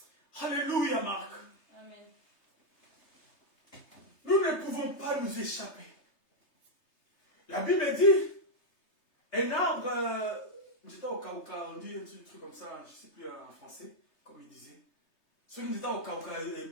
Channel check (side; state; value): right; late; 3.3 ms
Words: Alléluia, Marc. Amen. Nous ne pouvons pas nous échapper. La Bible dit, un arbre, j'étais au Cauca, on dit un truc comme ça, je ne sais plus en français, comme il disait. Celui qui était au Cauca, et